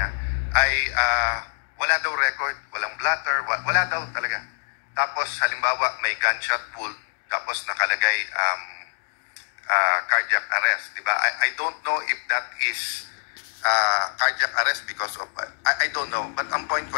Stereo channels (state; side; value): silent; right; digital silence